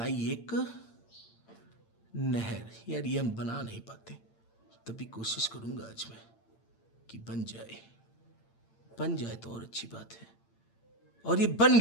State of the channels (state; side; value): late; right; 8.8 ms